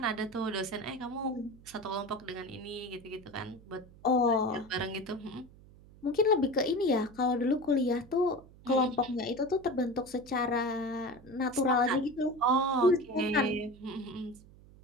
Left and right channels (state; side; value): noise; right; hum, 23 dB below the sound